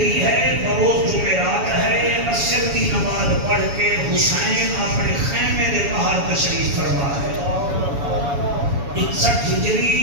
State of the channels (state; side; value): late; left; 7.1 ms